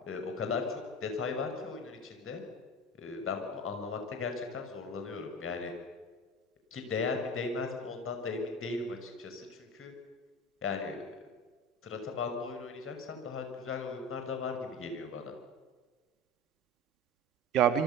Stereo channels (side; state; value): both; normal; correlation 0.31